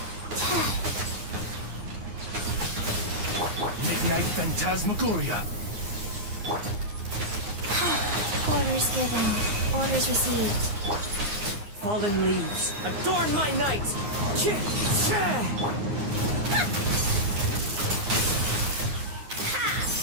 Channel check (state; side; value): late; left; 9.9 ms